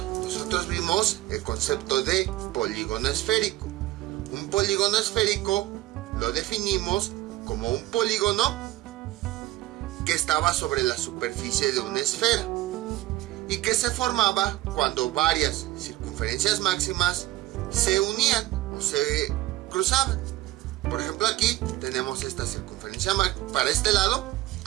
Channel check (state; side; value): quieter; left; 16.8 dB